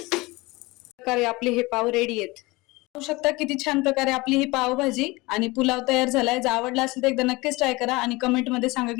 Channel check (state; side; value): quieter; right; 22.7 dB